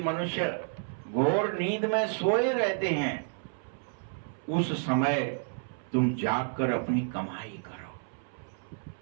मनुष्य घोर नींद में सोए रहते हैं, उस समय तुम जागकर अपनी कमाई करो।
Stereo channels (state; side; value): silent; left; 57 dB below the other